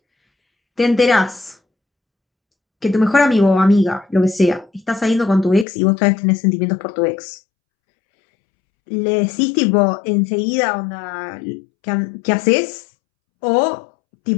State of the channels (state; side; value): drops out; right; at 5.7 s